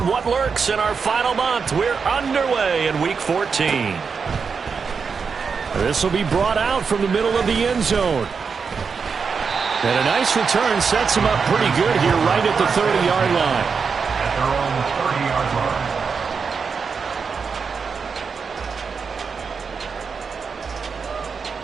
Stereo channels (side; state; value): left; quieter; 5.6 dB